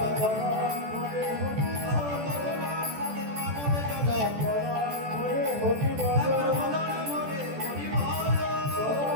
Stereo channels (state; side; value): late; left; 14 ms